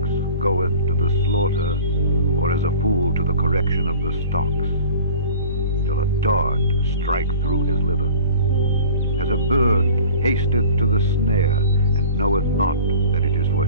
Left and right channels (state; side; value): inverted; both; correlation -0.43